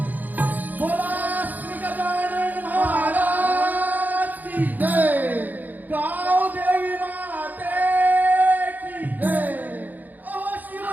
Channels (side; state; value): left; late; 0.084 ms